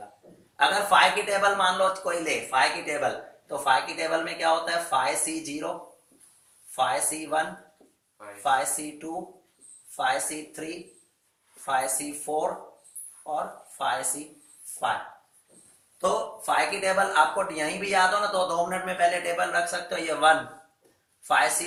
अगर 5 की टेबल मान लो कोई ले, 5 की टेबल, तो 5 की टेबल में क्या होता है, 5C0, 5C1, 5C2, 5C3, 5C4 और 5C5। तो 5 की टेबल आपको यहीं भी याद हो ना तो 2 मिनट में पहले टेबल रख सकते हो। ये 1,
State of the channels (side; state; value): both; identical; correlation 1.00